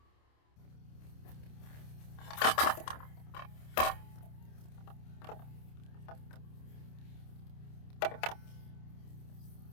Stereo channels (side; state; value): right; late; 27 ms